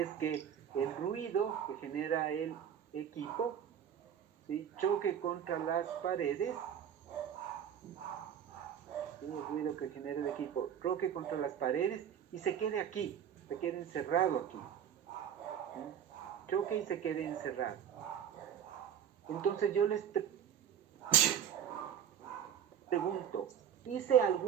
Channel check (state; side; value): quieter; left; 9.1 dB